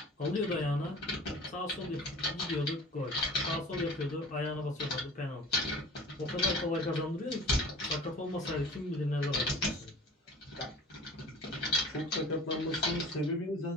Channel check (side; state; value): both; normal; correlation 0.42